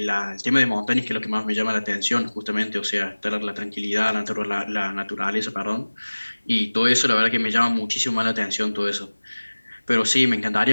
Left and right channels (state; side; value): inverted; both; correlation -1.00